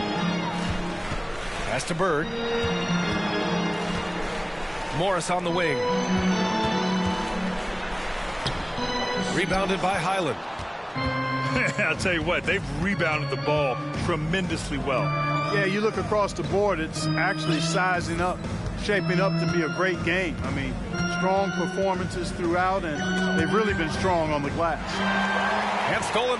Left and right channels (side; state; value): both; identical; correlation 1.00